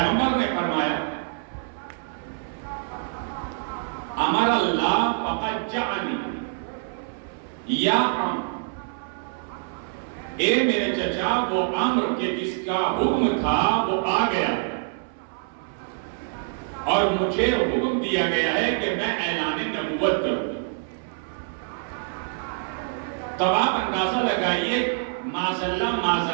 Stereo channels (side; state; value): left; silent; 61 dB below the other